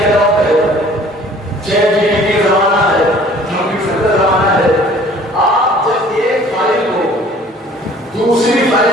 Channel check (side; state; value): both; normal; correlation 0.52